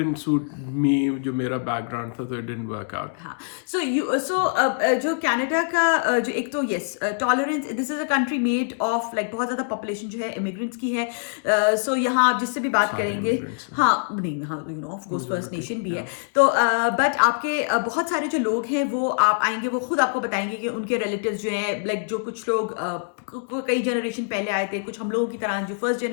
suit me, जो मेरा background था, so it didn't work out. हाँ. So जो कनाडा का जो एक तो yes tolerance, this is a country made of like बहुत ज़्यादा population जो है immigrants की है. So यहाँ आप जिससे भी बात करेंगे, हाँ नहीं, हाँ you know of course first nation भी है. तो बट आपके बहुत सारे जो लोग हैं वो आप आएंगे, वो खुद आपको बताएंगे कि उनके रिलेटिव्स जो हैं, लाइक जो कुछ लोग कई जनरेशन पहले आए थे, कुछ हम लोगों की तरह जो फर्स्ट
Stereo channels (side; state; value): right; silent; digital silence